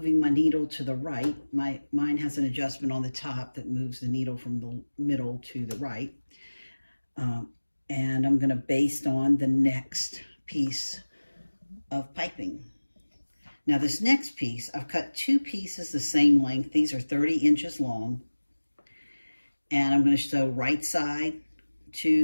my needle to the right. Mine has an adjustment on the top that moves the needle from the middle to the right. And I'm going to baste on the next piece of piping. Now this next piece, I've cut 2 pieces the same length. These are 30 inches long. And I'm going to sew right side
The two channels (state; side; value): inverted; both; correlation -1.00